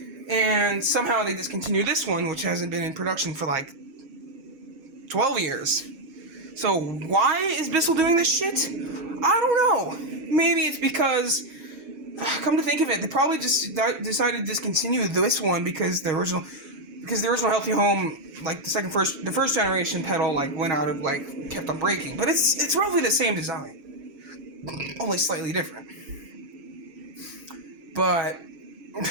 And somehow they discontinued this one, which hasn't been in production for like 12 years. So why is Bissell doing this shit? I don't know. Maybe it's because, come to think of it, they probably just decided to discontinue this one because the original Healthy Home, like the first generation pedal, like went out of, like, kept on breaking. But it's roughly the same design, only slightly different. But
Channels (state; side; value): late; left; 7.4 ms